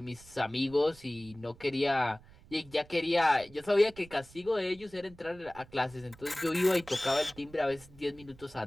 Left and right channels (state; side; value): noise; right; rumble, 23 dB below the sound